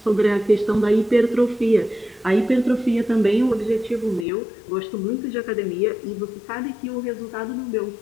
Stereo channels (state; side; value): drops out; right; at 4.2 s